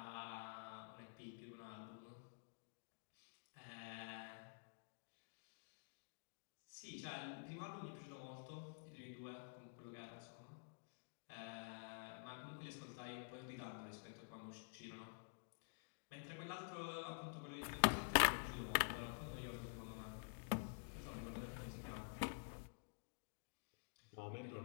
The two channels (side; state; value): right; silent; digital silence